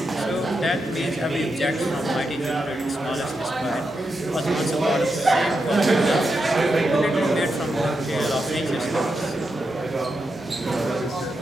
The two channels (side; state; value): both; normal; correlation 0.86